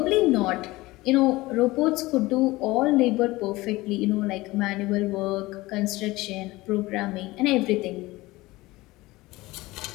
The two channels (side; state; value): right; quieter; 19.9 dB